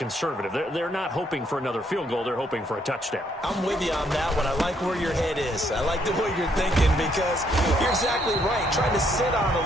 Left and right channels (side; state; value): both; normal; correlation 0.71